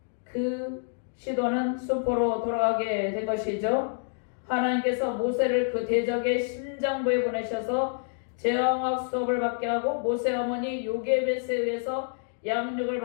그 시도는 수포로 돌아가게 된 것이죠. 하나님께서 모세를 그 대적의 심장부에 보내셔서 제왕학 수업을 받게 하고 모세 어머니 요게벳에 의해서 양육을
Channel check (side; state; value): right; silent; 59 dB below the other